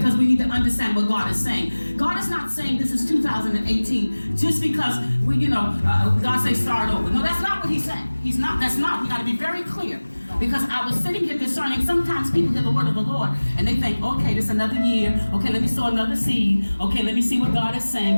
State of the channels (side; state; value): both; inverted; correlation -1.00